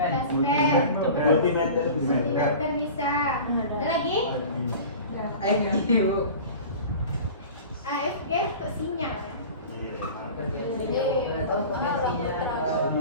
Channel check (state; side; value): inverted; both; correlation -0.38